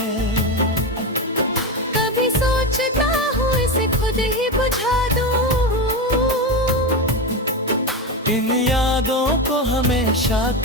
कभी सोचता हूँ इसे खुद ही बुझा दूँ, इन यादों को हमेशा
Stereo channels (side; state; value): both; normal; correlation 0.16